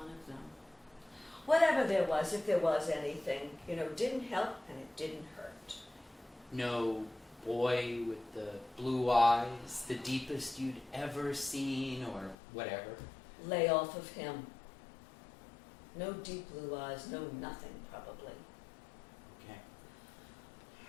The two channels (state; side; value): drops out; right; at 12.4 s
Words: of them. Whatever there was, if there was anything, didn't help and it didn't hurt. No boy with the blue eyes, the deepest you'd ever seen, or whatever. Lay off of him. No deep blue eyes, no nothing, probably. Okay.